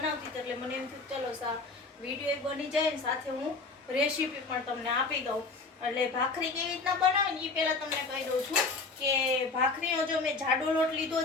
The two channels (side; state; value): right; quieter; 3.9 dB